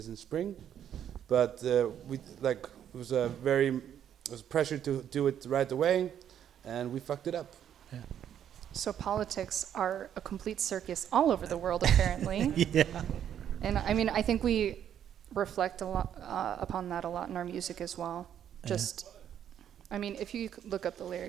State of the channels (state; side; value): quieter; left; 9.7 dB